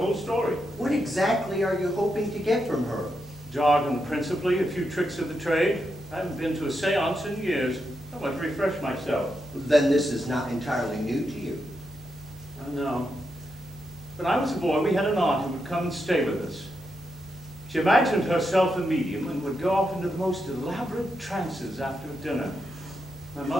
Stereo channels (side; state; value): both; normal; correlation 0.84